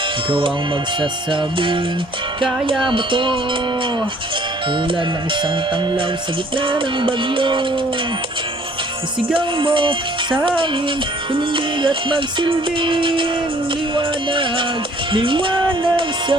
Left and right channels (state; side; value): normal; both; correlation 0.58